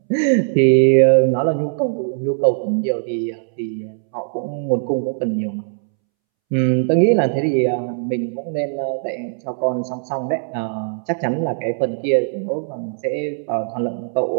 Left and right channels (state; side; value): silent; left; 66 dB below the other